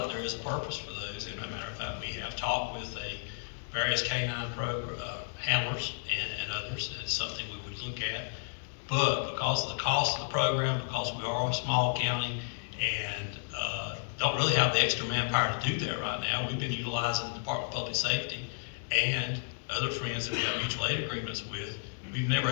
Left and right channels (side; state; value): right; silent; digital silence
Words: there is a purpose for those. And as a matter of fact, we have talked with various canine handlers and others. That's something we would look at. But because of the cost of the program, because we are a small county and don't really have the extra manpower to do that right now, we've been utilizing the Department of Public Safety and other friends that we have mutual aid agreements with. We've never